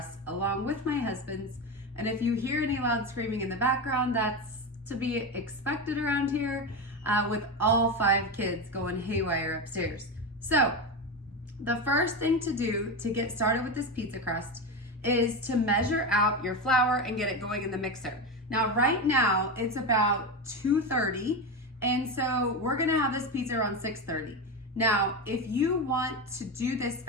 along with my husband's. And if you hear any loud screaming in the background, that's to be expected around here with all 5 kids going haywire upstairs. So the first thing to do to get started with this pizza crust is to measure out your flour and get it going in the mixer. Now, right now it's about 2:30, and so we're gonna have this pizza around 6:30. Now, if you want to do this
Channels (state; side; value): normal; both; correlation 0.17